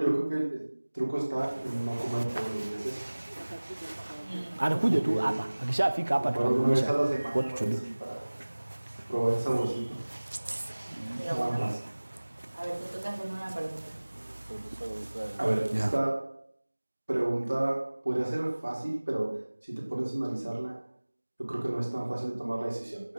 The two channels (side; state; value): both; inverted; correlation -1.00